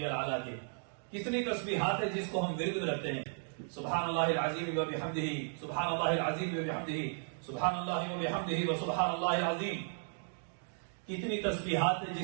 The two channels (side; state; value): left; silent; digital silence